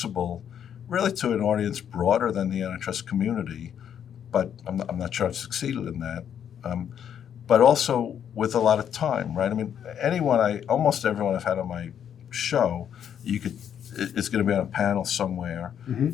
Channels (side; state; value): right; quieter; 8.9 dB